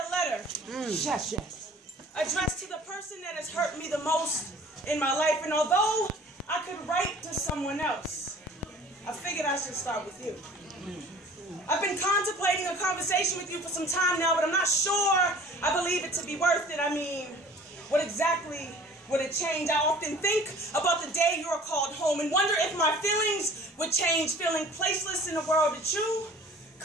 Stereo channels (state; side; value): normal; both; correlation 0.48